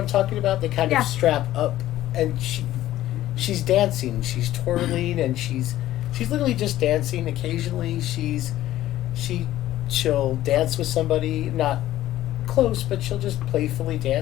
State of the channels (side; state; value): right; quieter; 14.2 dB